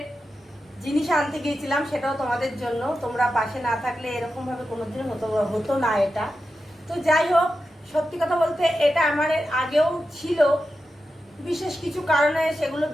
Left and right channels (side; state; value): both; normal; correlation 0.90